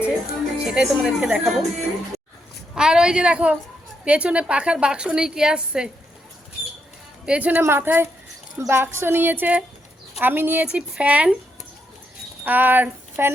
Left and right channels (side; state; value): both; normal; correlation 0.79